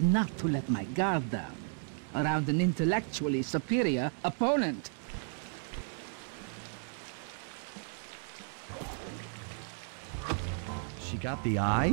to let my guard down around an intellectually superior opponent. She got the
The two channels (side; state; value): left; silent; 55 dB below the other